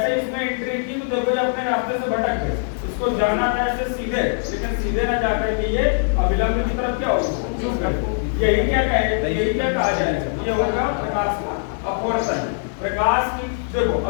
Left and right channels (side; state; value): right; silent; 63 dB below the other